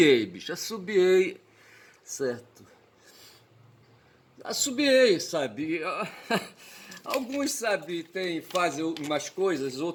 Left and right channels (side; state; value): both; identical; correlation 1.00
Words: bicho, assobiei, certo? Assobiei, sabe? Alguns, sabe, fazem umas coisas,